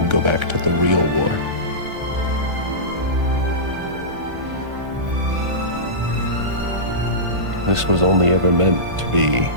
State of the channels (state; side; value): late; left; 1.5 ms